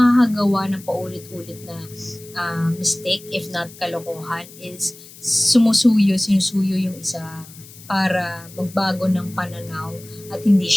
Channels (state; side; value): noise; left; hiss, 19 dB below the sound